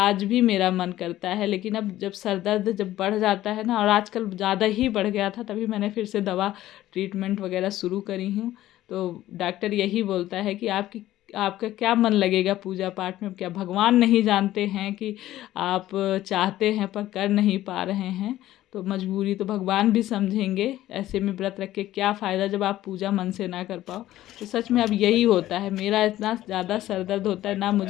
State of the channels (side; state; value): right; quieter; 14.4 dB